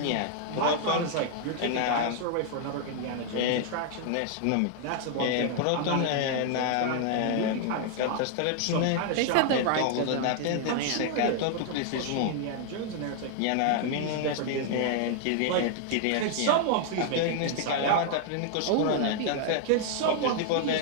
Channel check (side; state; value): both; different; correlation 0.00